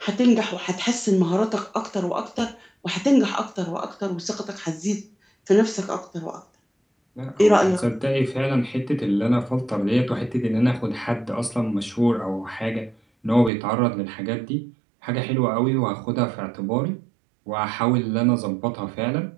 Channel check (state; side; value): drops out; left; at 13.5 s